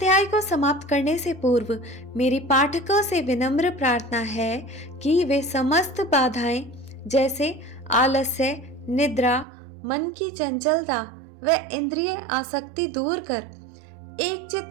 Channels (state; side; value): drops out; left; at 9.5 s